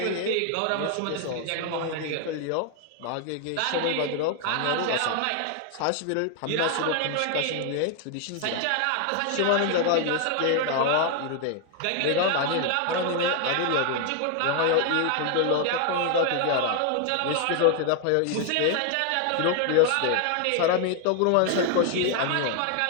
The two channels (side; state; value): both; different; correlation 0.00